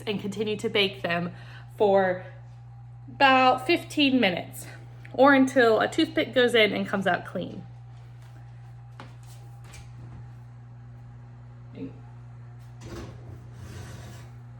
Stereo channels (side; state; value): both; identical; correlation 1.00